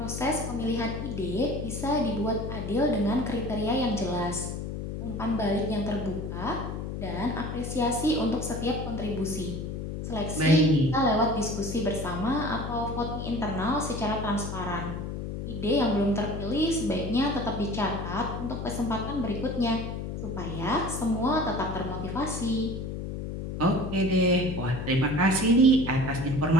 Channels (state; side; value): noise; left; hum, 5 dB below the sound